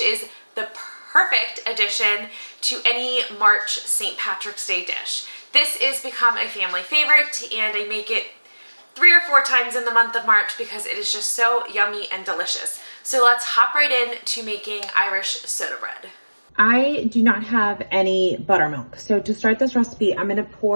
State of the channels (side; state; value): both; inverted; correlation -1.00